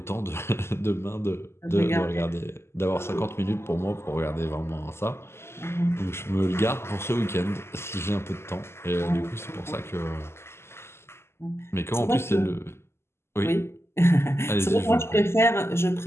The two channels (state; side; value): late; right; 0.12 ms